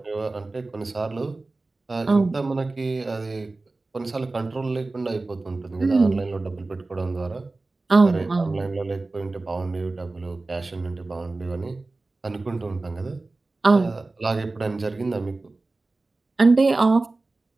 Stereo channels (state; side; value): quieter; left; 3.3 dB